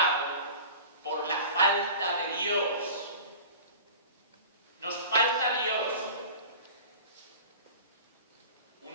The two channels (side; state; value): both; inverted; correlation -0.38